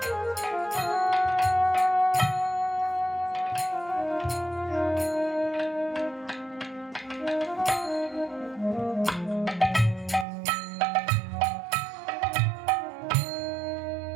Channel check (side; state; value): left; drops out; at 10.2 s